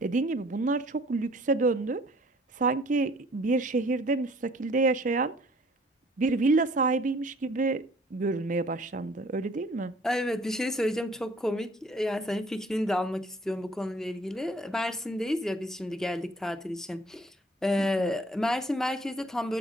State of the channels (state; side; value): normal; both; correlation 0.56